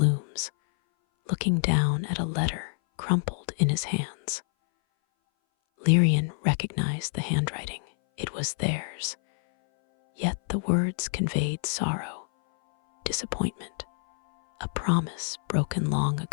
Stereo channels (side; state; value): right; silent; 58 dB below the other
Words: looking down at a letter crumpled in his hands. Lyrian recognized the handwriting. It was theirs, yet the words conveyed sorrow, disappointment, a promise broken long